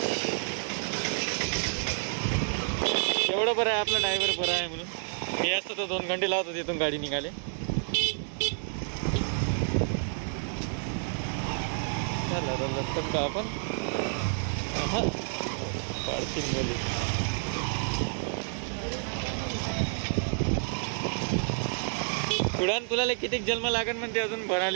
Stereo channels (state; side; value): silent; left; 58 dB below the other